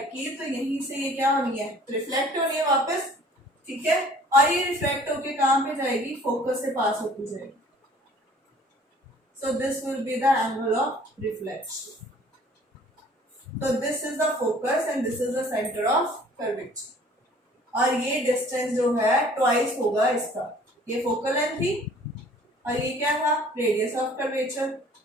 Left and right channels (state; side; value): normal; both; correlation 0.53